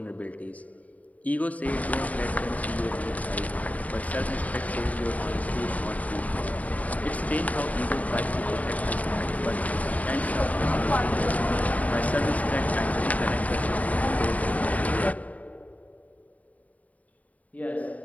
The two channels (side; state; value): right; late; 0.071 ms